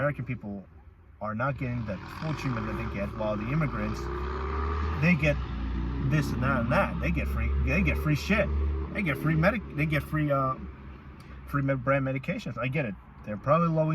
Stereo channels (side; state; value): both; identical; correlation 1.00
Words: people are not getting the full treatment that they get, while the immigrants, they get this and that and that. They get free shit. They get free brand medications. I get it. They're probably low